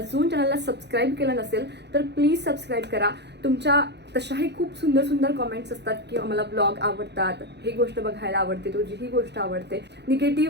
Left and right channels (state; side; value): late; left; 0.50 ms